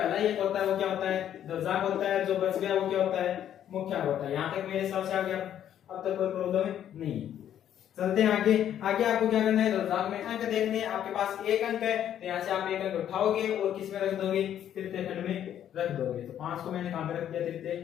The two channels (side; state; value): right; quieter; 10.4 dB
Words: एक होता है वो क्या होता है दशक होता है, जो बच गया वो क्या होता है मुख्यांक होता है। यहाँ तक मेरे हिसाब से आ गया, अब तक कोई प्रॉब्लम नहीं है। चलते हैं आगे। आगे आपको क्या करना है, दशक में अंक देखने हैं। आपके पास एक अंक है तो यहाँ से आप एक अंक उठाओगे और किस में रख दोगे, तृतीय खंड में रख दोगे। तो 5 को मैंने कहां पे रख दिया, तृतीय